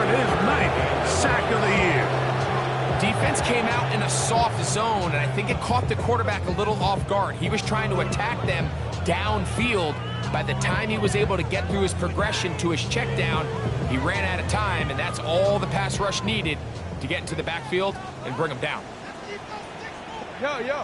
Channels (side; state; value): both; identical; correlation 1.00